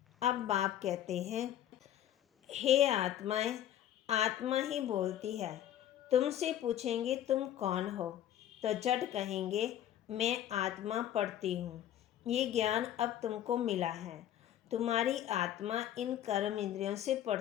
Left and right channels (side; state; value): right; quieter; 11.5 dB